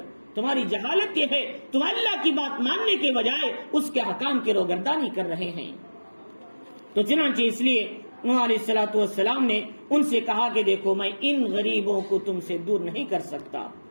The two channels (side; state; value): both; inverted; correlation -1.00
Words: تمہاری جہالت یہ ہے تم اللہ کی بات ماننے کے بجائے اس کے حکام کی روگردانی کر رہے ہیں۔ تو چنانچہ اس لیے نوح علیہ الصلوۃ والسلام نے ان سے کہا کہ دیکھو میں ان غریبوں کو تم سے دور نہیں کر سکتا،